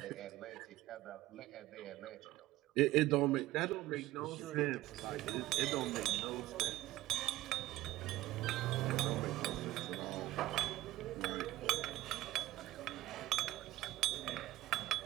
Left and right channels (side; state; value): left; quieter; 16.5 dB